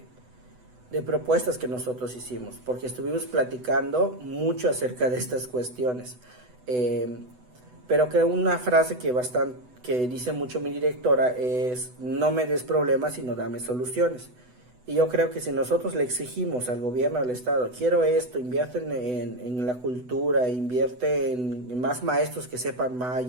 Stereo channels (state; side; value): late; left; 8.0 ms